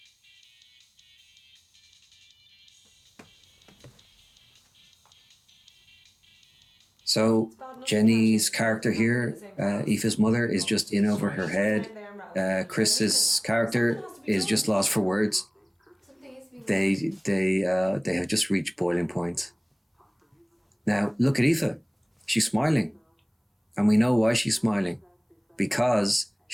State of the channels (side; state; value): both; identical; correlation 1.00